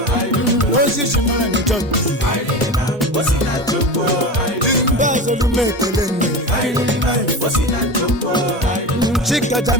Moses mara m John. o si na Chukwu, Ndị azọlụ m ekele nne. o si na Chukwu, Chika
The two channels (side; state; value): both; normal; correlation 0.26